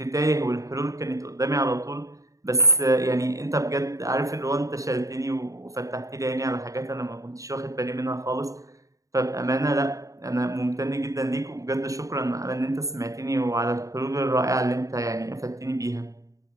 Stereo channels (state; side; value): late; left; 0.16 ms